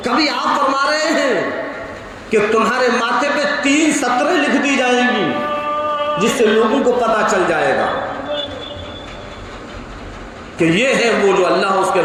کبھی آپ فرما رہے ہیں کہ تمہارے ماتھے پہ 3 سطریں لکھ دی جائیں گی جس سے لوگوں کو پتہ چل جائے گا کہ یہ ہے وہ جو اللہ اس کے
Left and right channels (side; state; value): both; identical; correlation 1.00